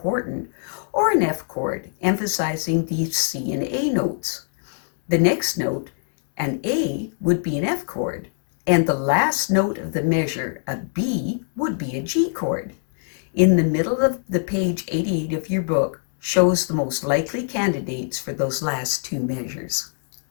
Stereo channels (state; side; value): silent; right; 62 dB below the other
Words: or an F chord, emphasizing the C and A notes. The next note, an A, would be an F chord, and the last note of the measure, a B, would be a G chord. In the middle of the page 88 of your book shows the most likely candidates for those last 2 measures.